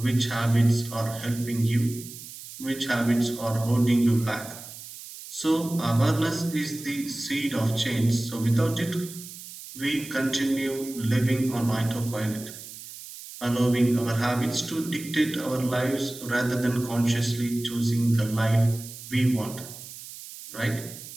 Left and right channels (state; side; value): noise; right; hiss, 14 dB below the sound